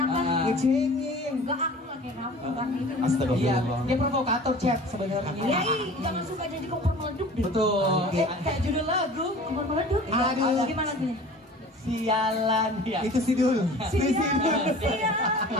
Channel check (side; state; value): both; normal; correlation 0.43